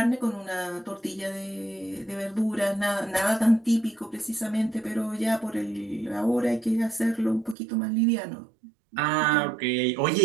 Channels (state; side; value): drops out; left; at 7.6 s